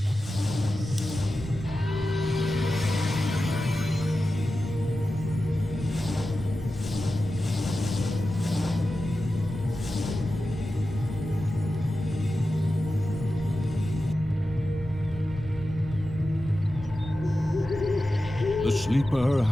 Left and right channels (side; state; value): both; normal; correlation 0.92